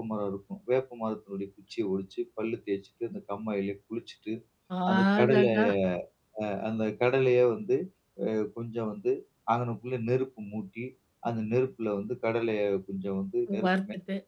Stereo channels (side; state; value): both; identical; correlation 1.00